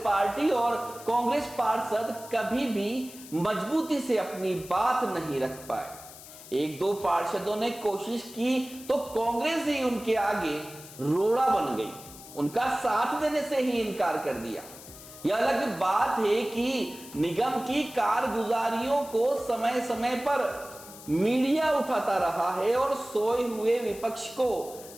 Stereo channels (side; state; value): left; noise; hiss, 17 dB below the sound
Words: पार्टी और कांग्रेस पार्षद कभी भी मजबूती से अपनी बात नहीं रख पाए। 1-2 पार्षदों ने कोशिश की तो कांग्रेस ही उनके आगे रोड़ा बन गई, उनका साथ देने से ही इनकार कर दिया। यह अलग बात है कि निगम की कारगुजारियों को समय समय पर मीडिया उठाता रहा है और सोए हुए विपक्ष को